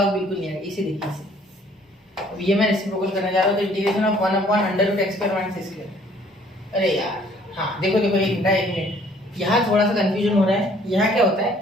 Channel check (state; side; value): normal; both; correlation 0.58